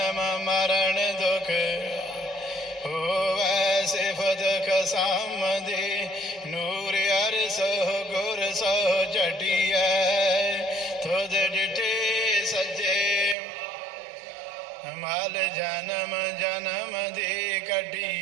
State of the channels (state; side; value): drops out; left; at 13.4 s